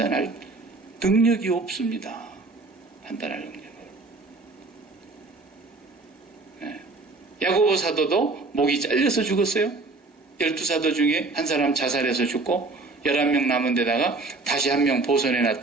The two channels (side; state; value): left; quieter; 3.5 dB